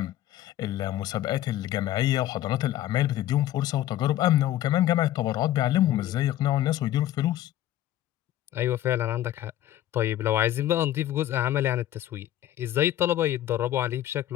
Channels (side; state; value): right; quieter; 13.3 dB